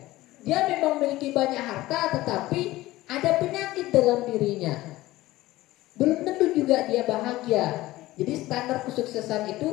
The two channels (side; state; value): right; quieter; 17.4 dB